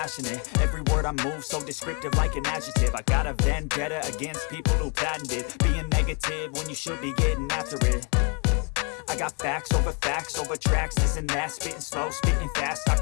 Every word I move so descriptive like an adjective. I got a vendetta against people who patented being negative when you should be getting after it. I got facts over tracks, this and that. Spitting slow, spitting fast, I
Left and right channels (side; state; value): right; quieter; 34.6 dB